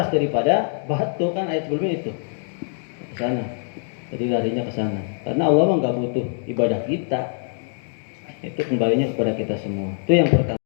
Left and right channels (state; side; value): silent; right; 63 dB below the other